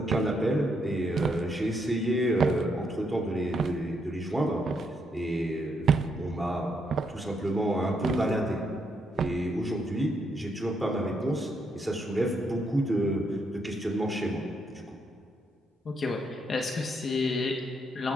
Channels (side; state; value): both; normal; correlation 0.76